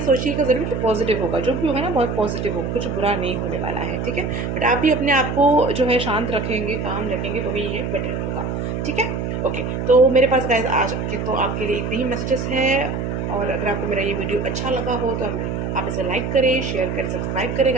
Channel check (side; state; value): right; noise; hum, 3 dB below the sound